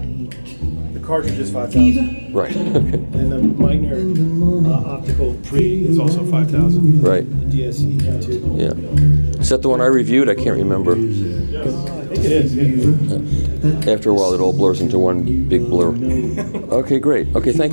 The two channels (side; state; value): both; inverted; correlation -1.00